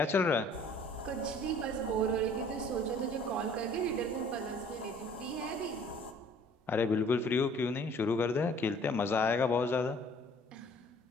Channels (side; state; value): both; normal; correlation 0.54